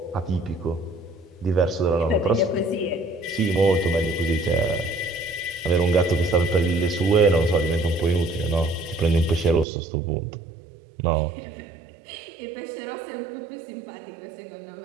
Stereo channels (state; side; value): drops out; left; at 9.7 s